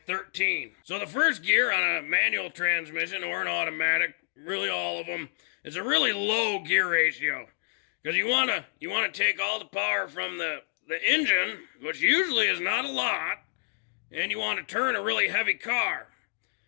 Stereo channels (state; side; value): silent; right; digital silence